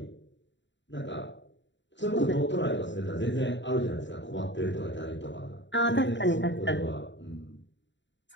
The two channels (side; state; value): right; late; 0.53 ms